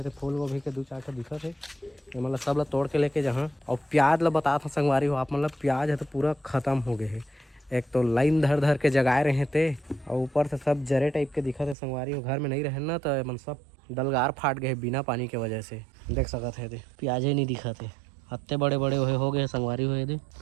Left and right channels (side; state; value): left; drops out; at 11.8 s